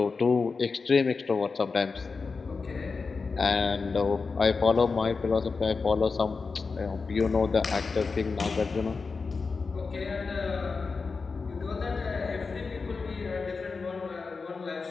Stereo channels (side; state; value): right; quieter; 4.6 dB